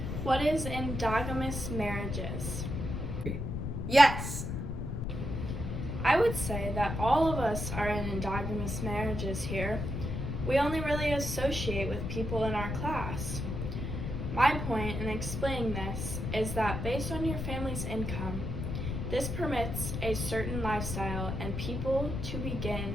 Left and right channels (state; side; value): noise; left; rumble, 3 dB below the sound